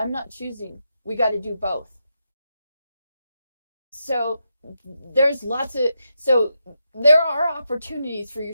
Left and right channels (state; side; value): inverted; both; correlation -0.85